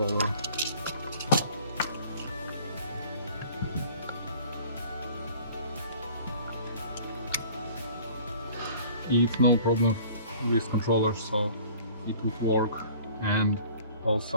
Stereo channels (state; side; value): inverted; both; correlation -0.49